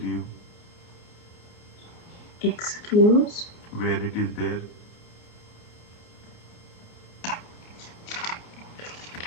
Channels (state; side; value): late; right; 29 ms